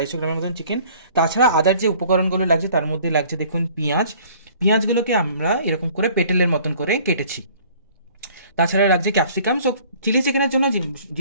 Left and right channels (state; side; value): inverted; both; correlation -0.54